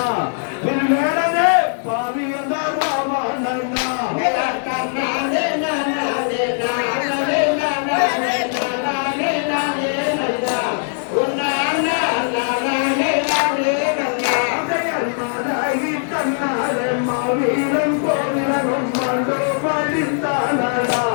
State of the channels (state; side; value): silent; right; digital silence